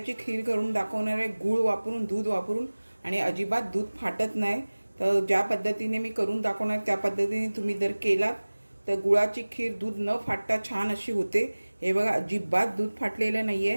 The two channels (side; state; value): both; inverted; correlation -1.00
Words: खीर करून दाखवणार आहे। गूळ वापरून, दूध वापरून आणि अजिबात दूध फाटत नाही। तर ज्या पद्धतीने मी करून दाखवणार त्या पद्धतीने तुम्ही जर केलात तर गुळाची खीर दूध न फाटता छान अशी होते। हे बघा, अजिबात दूध फाटलेलं